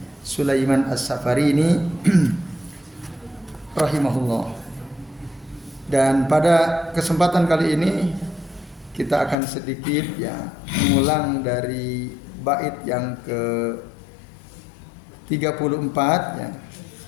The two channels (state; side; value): drops out; right; at 9.3 s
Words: Sulaiman As-Safarini rahimahullah. Dan pada kesempatan kali ini kita akan sedikit mengulang dari bait yang ke 34